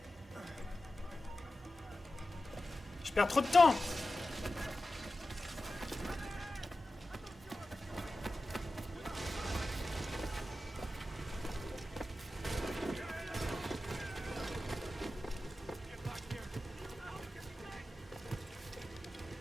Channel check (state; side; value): normal; both; correlation 0.93